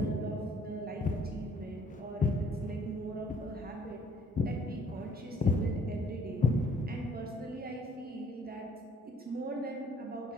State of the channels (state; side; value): normal; both; correlation 0.60